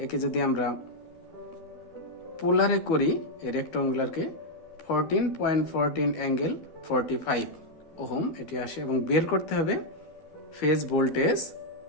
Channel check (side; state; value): right; late; 12 ms